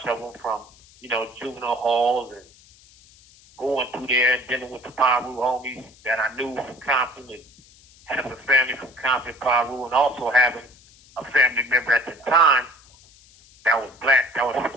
of them from, you know, juvenile halls and going through there, dealing with the Paru homies that I knew from Compton and having a family from Compton, Paru, and also having a family member at the time that was black, that was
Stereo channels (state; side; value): noise; left; hiss, 26 dB below the sound